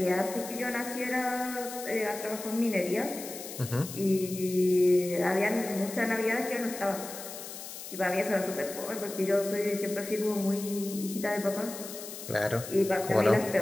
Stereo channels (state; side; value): noise; left; hiss, 11 dB below the sound